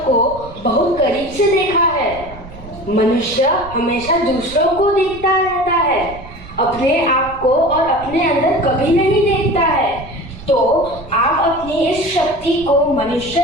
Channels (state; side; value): noise; right; rumble, 16 dB below the sound